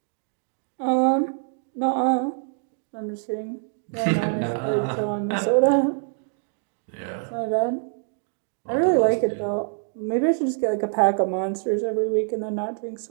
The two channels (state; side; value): silent; left; 58 dB below the other